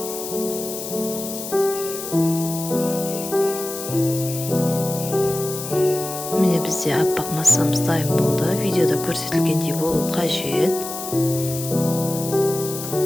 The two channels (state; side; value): noise; left; hiss, 8 dB below the sound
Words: Міне бізде аппақ массамыз дайын болды. Видеода көрсетілгендей болу қажет.